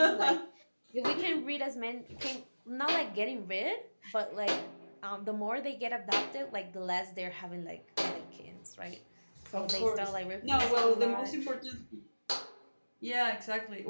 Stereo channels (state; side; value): inverted; both; correlation -1.00